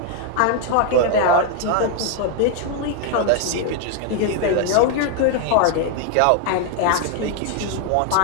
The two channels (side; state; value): both; different; correlation 0.00